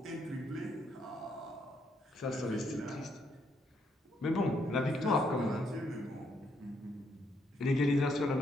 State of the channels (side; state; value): both; normal; correlation 0.74